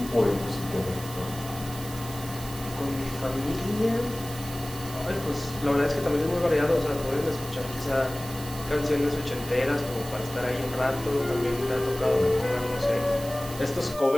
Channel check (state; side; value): noise; right; hiss, 14 dB below the sound